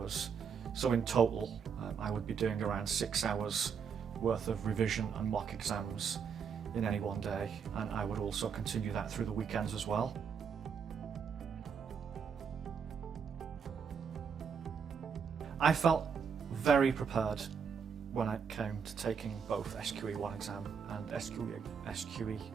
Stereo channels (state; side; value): quieter; left; 6.5 dB